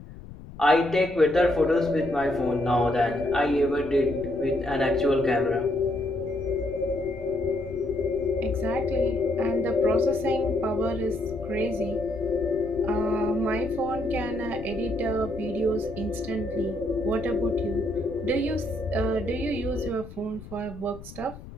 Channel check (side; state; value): left; noise; rumble, 15 dB below the sound